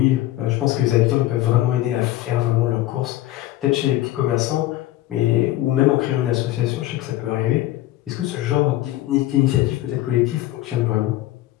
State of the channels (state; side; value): quieter; right; 15.4 dB